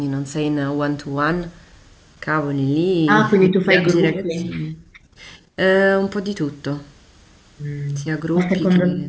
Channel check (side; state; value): both; identical; correlation 1.00